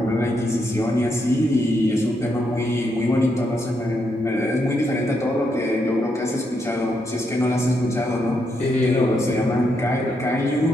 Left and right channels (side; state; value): both; normal; correlation 0.79